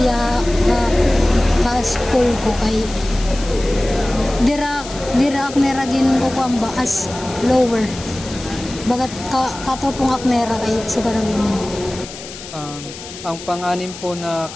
ya sa school ko kay dira akneragin ko kuan ba as lower. Bagat katopong aknera kay sugaragin mo. Ang pang-anim po na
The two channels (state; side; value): noise; left; hiss, 13 dB below the sound